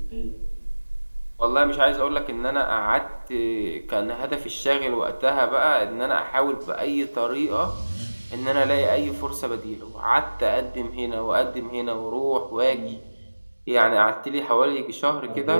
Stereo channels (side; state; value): both; inverted; correlation -1.00